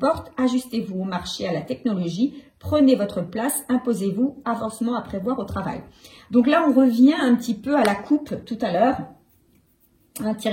ajustez-vous au marché, à la technologie, prenez votre place, imposez-vous, avancement à prévoir au travail. Donc là, on revient un petit peu à la coupe tout à l'heure,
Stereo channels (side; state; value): both; identical; correlation 1.00